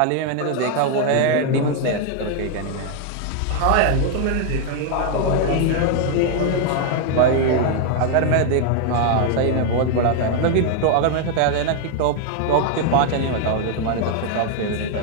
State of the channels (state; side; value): different; both; correlation 0.00